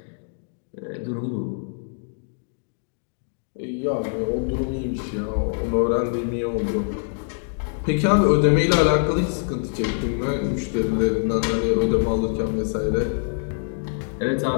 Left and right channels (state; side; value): silent; right; digital silence